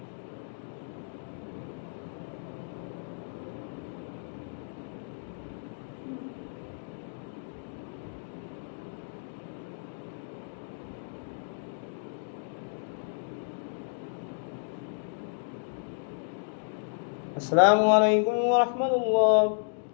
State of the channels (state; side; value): silent; right; digital silence